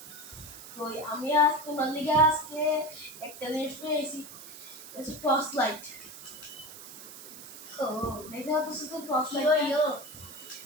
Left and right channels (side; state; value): right; noise; hiss, 14 dB below the sound